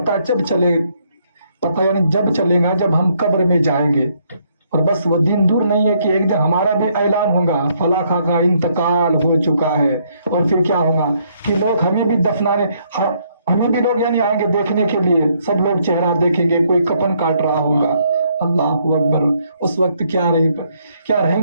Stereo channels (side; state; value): both; inverted; correlation -0.71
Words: जब चले, पता यानी जब चलेगा जब हम कब्र में जाएंगे. और बस वो दिन दूर नहीं है कि एक दिन हमारा भी ऐलान होगा फला खा का इंतकाल हो चुका है. और फिर क्या होगा कि लोग हमें भी दफनाने, हमें भी लोग यानी आएंगे देखने के लिए. सब लोग चेहरा देखेंगे, कोई कफन काट रहा होगा. अल्लाह अकबर. उस वक्त क्या